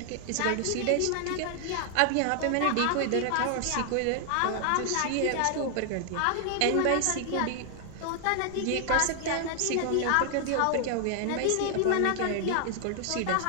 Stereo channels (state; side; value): different; both; correlation 0.00